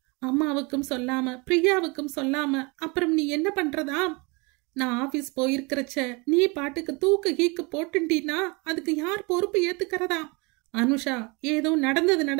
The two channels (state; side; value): quieter; left; 28.4 dB